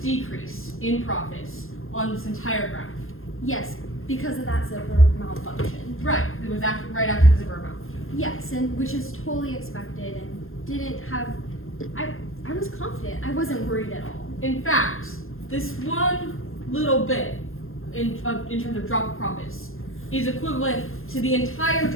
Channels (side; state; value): right; late; 0.60 ms